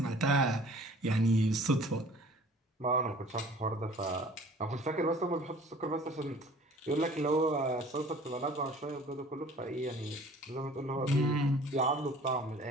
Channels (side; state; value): both; normal; correlation 0.49